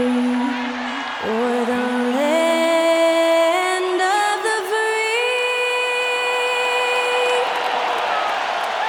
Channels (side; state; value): both; identical; correlation 1.00